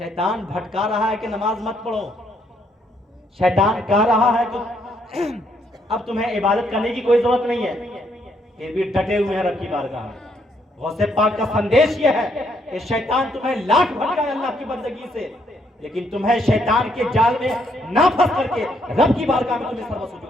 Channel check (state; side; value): normal; both; correlation 0.72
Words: بھٹکا رہا ہے کہ نماز مت پڑھو، شیطان کہہ رہا ہے کہ اب تمہیں عبادت کرنے کی کوئی ضرورت نہیں ہے، پھر بھی ڈٹے ہوئے ہیں رب کی بارگاہ میں۔ غوث پاک کا سندیش یہ ہے کہ شیطان تمہیں لاکھ بھٹکائے اللہ کی بندگی سے، لیکن تمہیں شیطان کے جال میں نہ پھنس کر کے رب کی بارگاہ میں تمہیں سرو